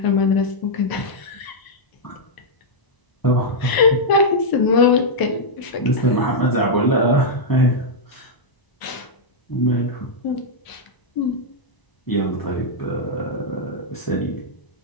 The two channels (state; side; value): late; right; 1.0 ms